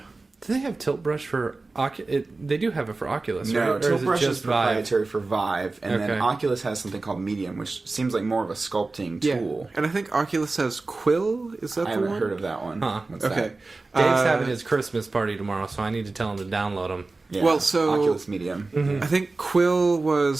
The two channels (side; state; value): left; quieter; 3.5 dB